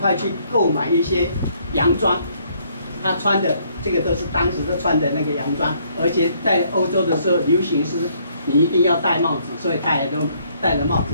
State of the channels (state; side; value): inverted; both; correlation -0.67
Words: 去购买一些洋装。他穿的这个都是当时的穿的那个洋装，而且在欧洲的时候流行是你一定要戴帽子，所以他也都戴了帽子。